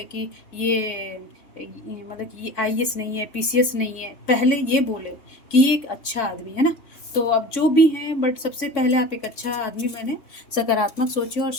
कि मतलब कि ये IAS नहीं है, PCS नहीं है, पहले ये बोले कि ये एक अच्छा आदमी है ना। तो अब जो भी हैं, बट सबसे पहले आप एक अच्छा आदमी बने, सकारात्मक सोचिए और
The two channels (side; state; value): right; late; 3.6 ms